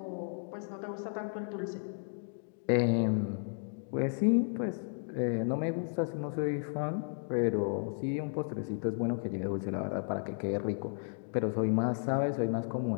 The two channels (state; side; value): silent; right; digital silence